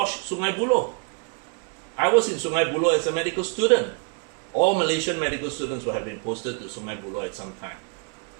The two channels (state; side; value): quieter; left; 38.3 dB